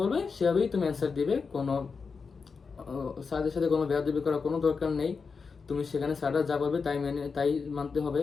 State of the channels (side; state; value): right; quieter; 5.1 dB